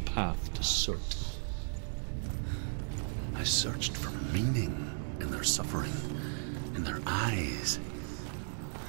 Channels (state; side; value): silent; left; digital silence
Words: to Surt. I searched for meaning in their suffering, in their eyes.